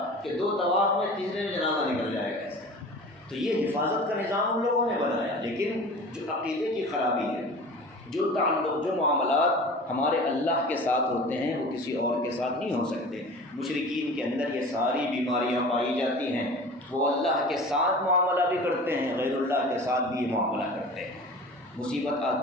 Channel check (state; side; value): normal; both; correlation 0.39